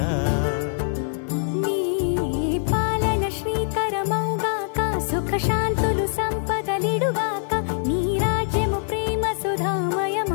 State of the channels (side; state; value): right; silent; digital silence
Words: నీ పాలన శ్రీకరమౌగాక సుఖ శాంతులు సంపదలిడుగాక నీ రాజ్యము ప్రేమ